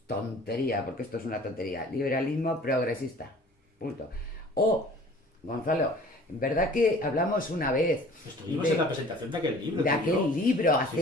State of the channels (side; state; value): both; normal; correlation 0.49